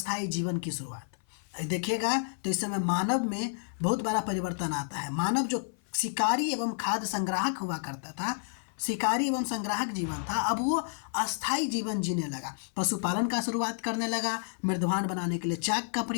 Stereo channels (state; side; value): silent; right; 56 dB below the other